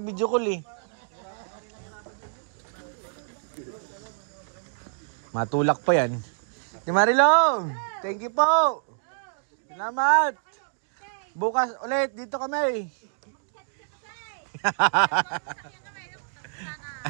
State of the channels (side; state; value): left; silent; digital silence